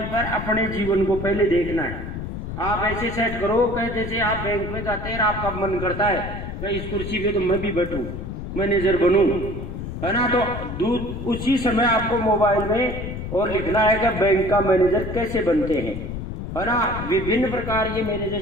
पर अपने जीवन को पहले देखना है। आप ऐसे सेट करो कि जैसे आप बैंक में जाते हैं, आपका मन करता है मैं इस कुर्सी पे तो मैं भी बैठूं, मैनेजर बनूं, है ना। तो उसी समय आपको मोबाइल में और लिखना है कि बैंक का मैनेजर कैसे बनते हैं, है ना। विभिन्न प्रकार ये मैनेजर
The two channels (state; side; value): noise; left; rumble, 7 dB below the sound